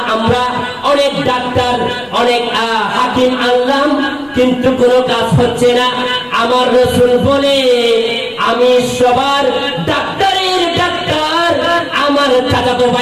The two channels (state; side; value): noise; left; rumble, 28 dB below the sound